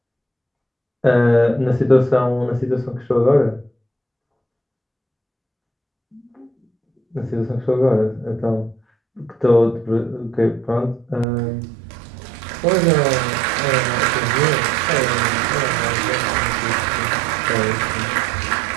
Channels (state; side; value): drops out; left; at 11.2 s